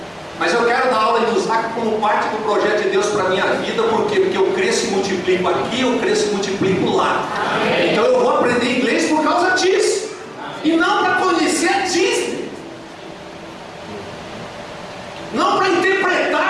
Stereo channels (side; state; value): both; identical; correlation 1.00